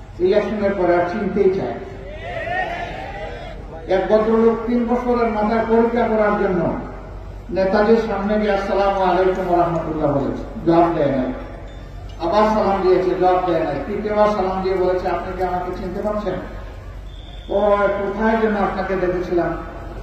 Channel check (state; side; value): identical; both; correlation 1.00